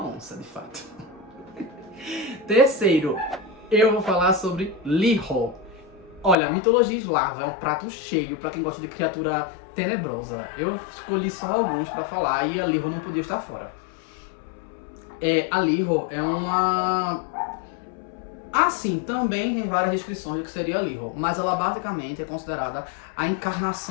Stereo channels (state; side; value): drops out; right; at 6.4 s